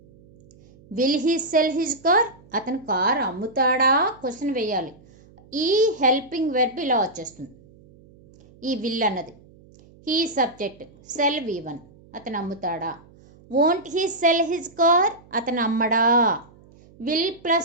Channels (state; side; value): noise; right; hum, 26 dB below the sound